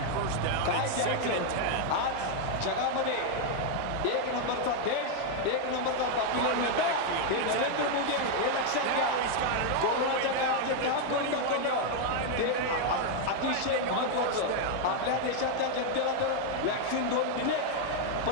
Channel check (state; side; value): different; both; correlation 0.00